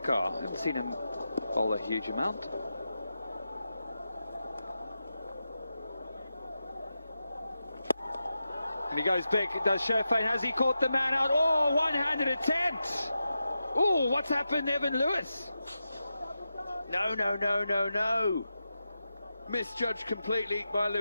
haven't seen him bowl a huge amount. And he goes big, does Sherfane. Has he caught the man out? Oh, one-handed attempt. Oh, what's happened, Evan Lewis? No. Misjudged completely by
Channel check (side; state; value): both; inverted; correlation -0.90